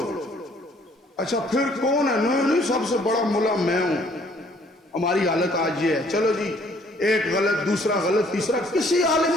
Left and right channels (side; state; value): both; normal; correlation 0.61